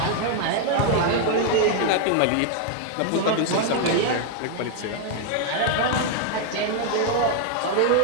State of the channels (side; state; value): both; different; correlation 0.00